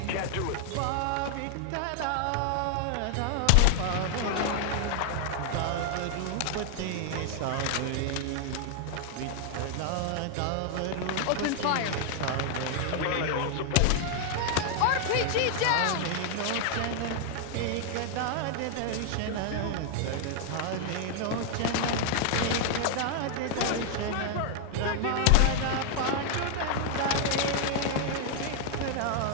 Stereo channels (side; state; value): both; different; correlation 0.00